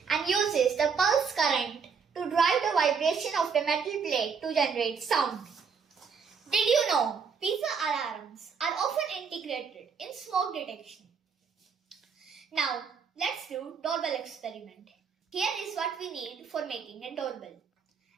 and uses the pulse current to drive the vibration of the metal plate to generate sound. Did you know piezo alarms are often integrated in smoke detection? Now let's do doorbell experiment. Here is what we need for making a doorbell.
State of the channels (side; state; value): left; quieter; 6.0 dB